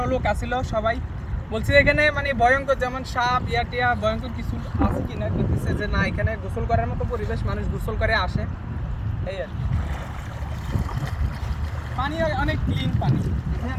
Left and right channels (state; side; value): identical; both; correlation 1.00